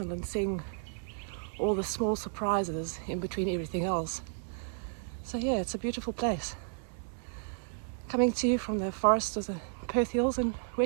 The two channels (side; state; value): left; silent; 56 dB below the other